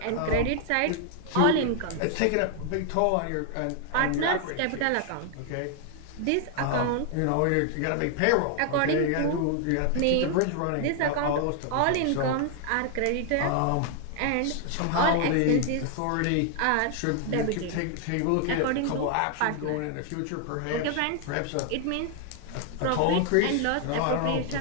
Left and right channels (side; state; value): both; different; correlation 0.00